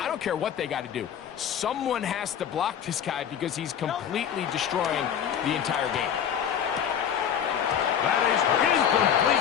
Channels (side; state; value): right; quieter; 8.7 dB